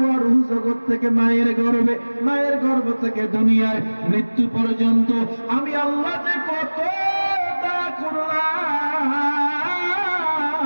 রূহ জগৎ থেকে মায়ের গর্ভে, মায়ের গর্ভ থেকে দুনিয়ায় মৃত্যু পর্যন্ত আমি আল্লাহ যে কত দয়া করলাম,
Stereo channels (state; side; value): inverted; both; correlation -1.00